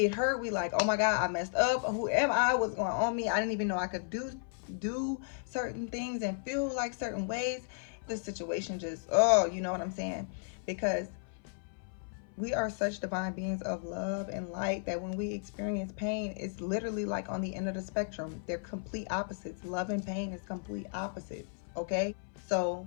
hurt. We like, oh my God, I messed up. Who am I? What's going on me? I didn't even know I could do certain things and feel like certain ways. The situation just, oh, you know what I'm saying? Because we are such divine beings of love and light that when we experience pain, it's literally like on the end of the spectrum. They're complete opposites. Love and pain is complete opposites, okay? So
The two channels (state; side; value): silent; right; 55 dB below the other